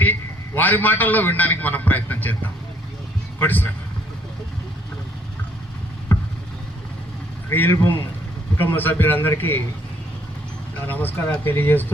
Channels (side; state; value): both; normal; correlation 0.65